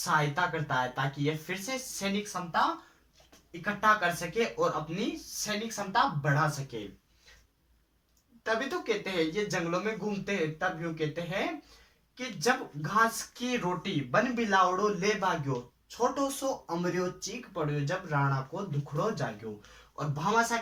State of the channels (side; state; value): both; identical; correlation 1.00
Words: करता है ताकि ये फिर से सैनिक क्षमता इकट्ठा कर सके और अपनी सैनिक क्षमता बढ़ा सके। तभी तो कहते हैं, ये जंगलों में घूमते हैं तब यूं कहते हैं कि जब घास की रोटी बन बिलावड़ो ले भाग्यो, छोटो सो अमरियो चीख पड़ियो, जब राणा को दुखड़ो जाग्यो। और भामाशाह